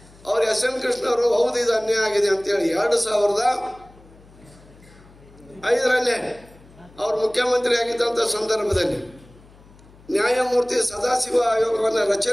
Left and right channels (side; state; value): left; noise; hum, 25 dB below the sound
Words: ಅವ್ರು SM ಕೃಷ್ಣವರು ಹೌದು ಇದು ಅನ್ಯಾಯ ಆಗಿದೆ ಅಂತೇಳಿ 2005 ಅವರು ಮುಖ್ಯಮಂತ್ರಿ ಆಗಿದ್ದಂಥ ಸಂದರ್ಭದಲ್ಲಿ ನ್ಯಾಯಮೂರ್ತಿ ಸದಾಶಿವ ಆಯೋಗವನ್ನು